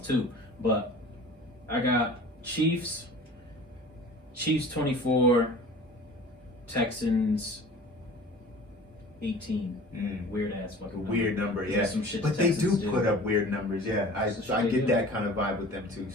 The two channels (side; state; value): both; normal; correlation 0.43